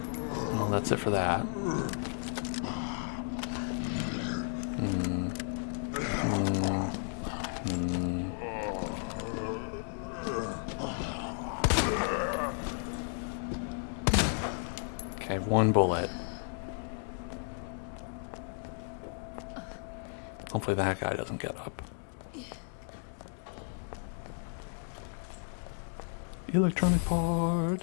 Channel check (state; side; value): silent; right; 55 dB below the other